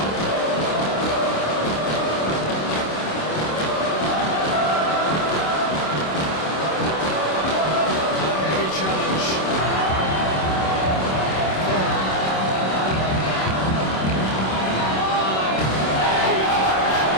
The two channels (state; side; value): late; right; 26 ms